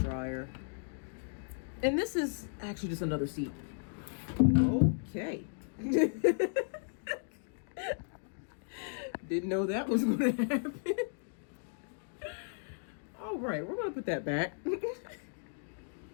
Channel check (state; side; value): silent; right; digital silence